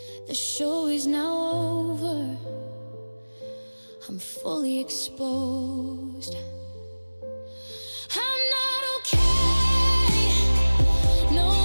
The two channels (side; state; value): both; inverted; correlation -1.00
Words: the show is now over, I'm fully exposed. I'm not okay, no,